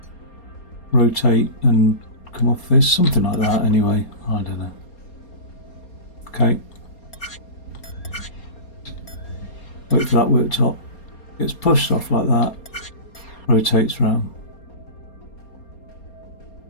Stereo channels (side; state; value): right; late; 4.3 ms